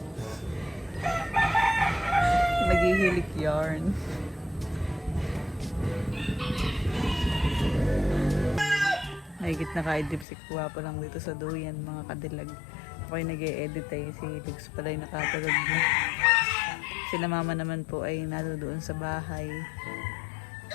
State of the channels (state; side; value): drops out; right; at 10.2 s